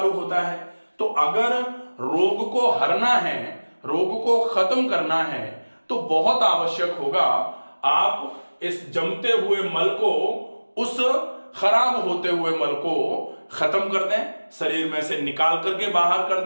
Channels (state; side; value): inverted; both; correlation -1.00